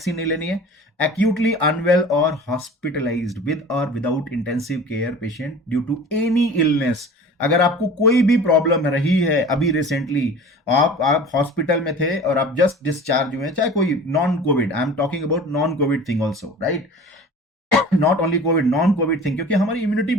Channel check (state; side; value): normal; both; correlation 0.40